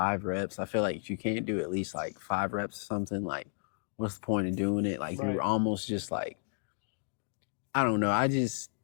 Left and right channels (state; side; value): silent; right; digital silence